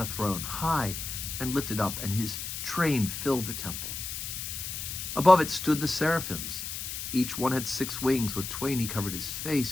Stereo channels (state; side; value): noise; left; hiss, 6 dB below the sound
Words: throne, high and lifted up, and his train filled the temple. Above it stood the seraphims. Each one had 6 wings. With twain he covered his